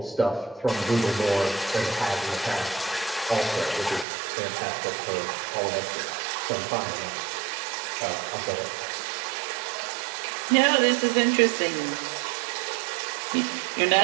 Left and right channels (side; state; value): left; drops out; at 4.0 s